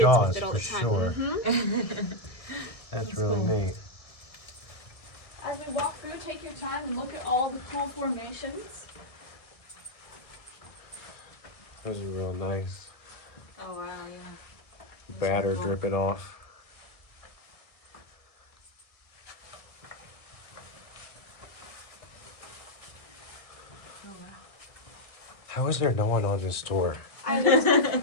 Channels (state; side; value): late; right; 1.6 ms